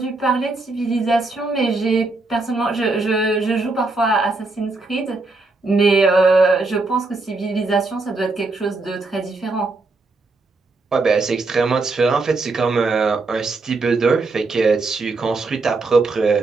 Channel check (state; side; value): quieter; left; 3.5 dB